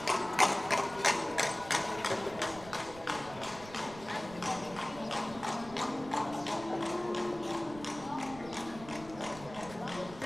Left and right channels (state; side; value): noise; right; rumble, 16 dB below the sound